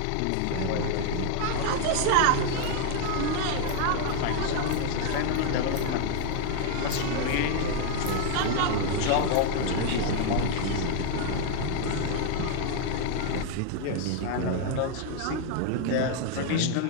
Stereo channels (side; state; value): both; different; correlation 0.00